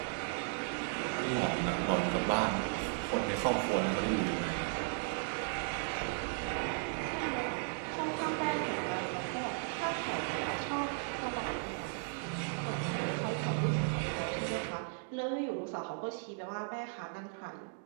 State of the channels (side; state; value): left; silent; 54 dB below the other